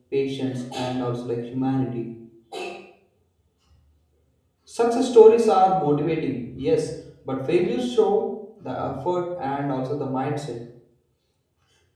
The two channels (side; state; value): both; identical; correlation 1.00